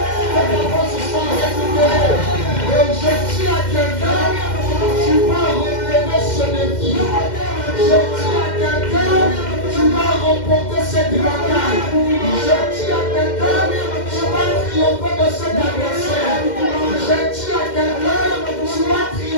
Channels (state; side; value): late; right; 2.1 ms